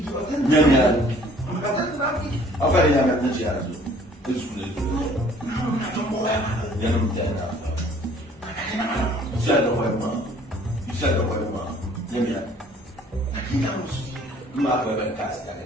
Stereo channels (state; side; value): normal; both; correlation 0.55